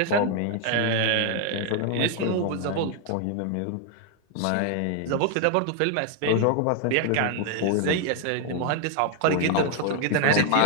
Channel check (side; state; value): both; different; correlation 0.00